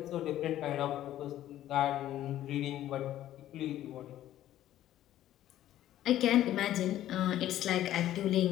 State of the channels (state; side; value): quieter; right; 12.9 dB